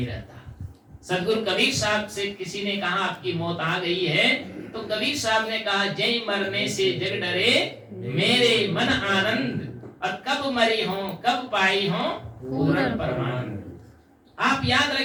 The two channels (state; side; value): identical; both; correlation 1.00